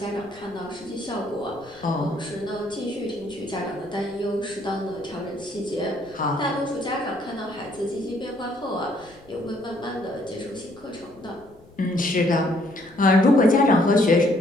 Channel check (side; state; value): left; noise; rumble, 26 dB below the sound